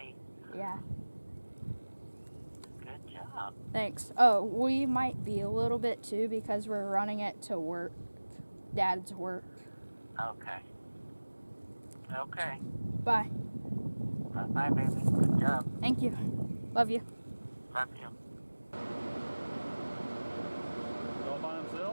Yeah. Good job. Thanks. Oh, we might be a little bit too because we're running it to work. Dad's work. Okay. Okay. Bye. Bye, baby. Good job. Thank you. Love you. Love you. All by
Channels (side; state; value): both; inverted; correlation -1.00